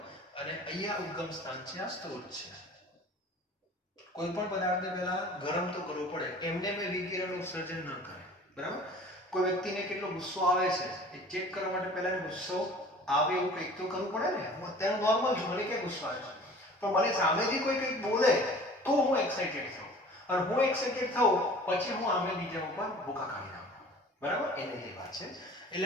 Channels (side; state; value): both; normal; correlation 0.46